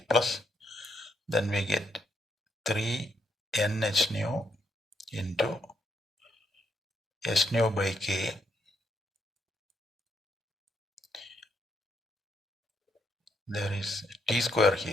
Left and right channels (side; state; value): both; normal; correlation 0.77